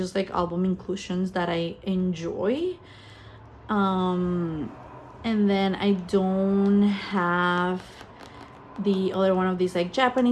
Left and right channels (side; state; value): both; identical; correlation 1.00